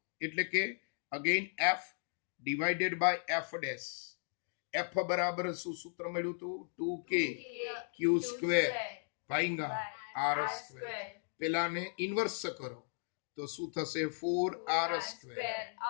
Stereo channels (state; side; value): silent; right; digital silence